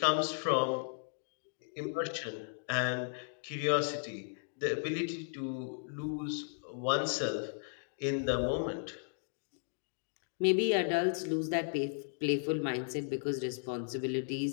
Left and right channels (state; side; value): silent; right; digital silence